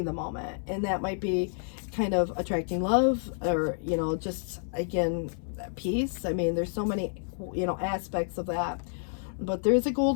the moment. And that might be kind of attracting love, or, you know, just, again, peace. I mean, there's so many, you know, aspects of that. But there's a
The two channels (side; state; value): right; silent; 58 dB below the other